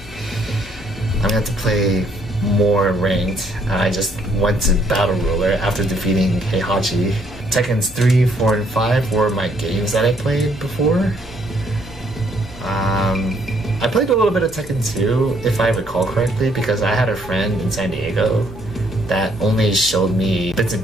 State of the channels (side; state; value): left; noise; hum, 20 dB below the sound